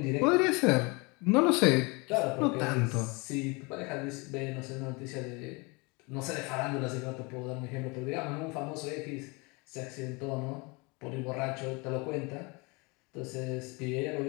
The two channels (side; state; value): right; quieter; 27.9 dB